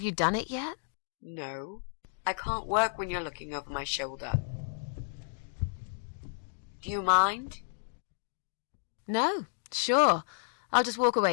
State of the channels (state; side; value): silent; right; digital silence